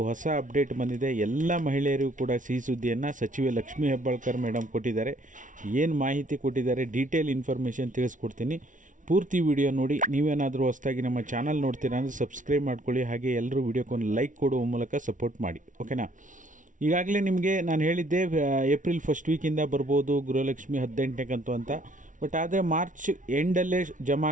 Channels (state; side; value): late; left; 0.37 ms